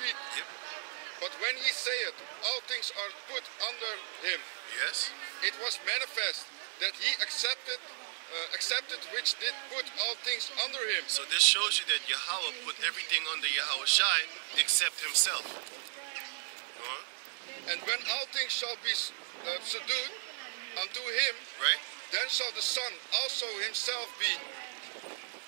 Yep. But when he saith, all things are put under him, Yes. it was manifest that he accepted which did put all things under him. So this shows you that Yahweh put everything under Yahweh Shai except himself. Go on. And when all things shall be subdued unto him, right? then shall the Son also himself be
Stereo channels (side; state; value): left; silent; digital silence